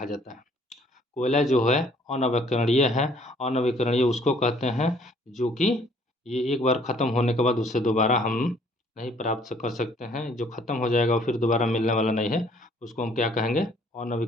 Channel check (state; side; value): normal; both; correlation 0.60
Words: जाता है। कोयला जो है अनवीकरणीय है। अनवीकरणीय उसको कहते हैं जो कि ये एक बार ख़त्म होने के बाद उससे दोबारा हम नहीं प्राप्त कर सकते हैं। जो ख़त्म हो जाएगा और फिर दोबारा मिलने वाला नहीं है, उसको हम क्या कहेंगे?